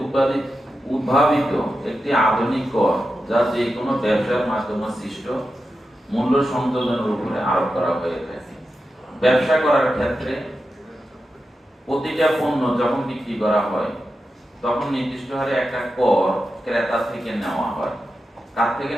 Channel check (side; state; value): both; normal; correlation 0.90